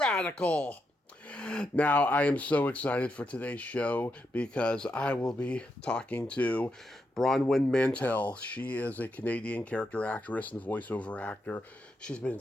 Now, I am so excited for today's show because I will be talking to Bronwen Mantel. She is a Canadian character actress and voiceover actor. She's been in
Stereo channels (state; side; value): normal; both; correlation 0.83